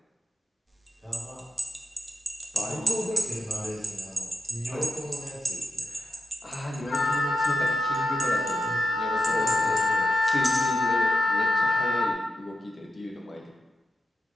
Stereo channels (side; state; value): both; normal; correlation 0.88